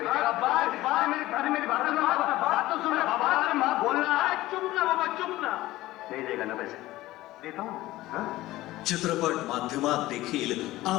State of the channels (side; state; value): right; quieter; 17.0 dB